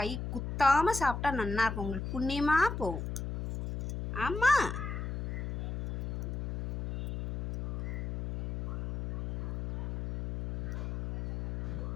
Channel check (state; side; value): noise; left; hum, 4 dB below the sound